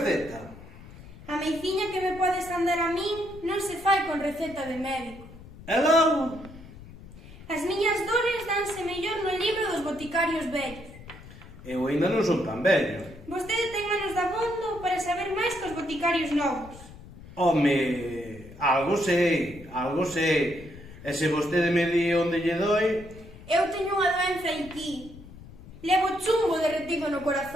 A meiciña que me pode sandar a min non se fai con receta de médico. E logo? As miñas dores danse mellor no libro dos boticarios vellos. Eu ainda non son tan vello. Vostede ten manos de abondo para saber máis que os boticarios novos. Home, algo sei. E se vostede me di onde lle doi... Eu teño unha doenza aquí. Levo chumbo derretido no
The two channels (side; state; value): left; noise; rumble, 17 dB below the sound